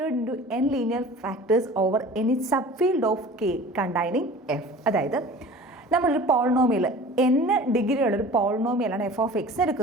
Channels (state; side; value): normal; both; correlation 0.42